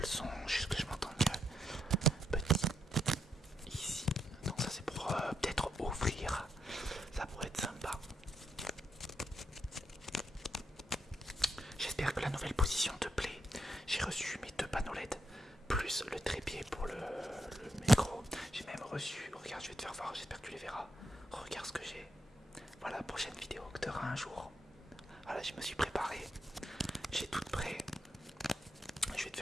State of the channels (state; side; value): normal; both; correlation 0.79